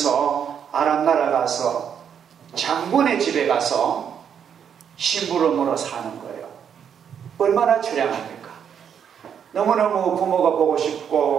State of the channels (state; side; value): quieter; left; 8.0 dB